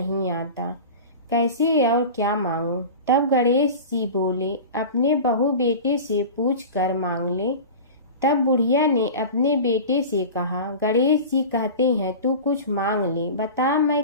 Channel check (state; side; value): inverted; both; correlation -0.32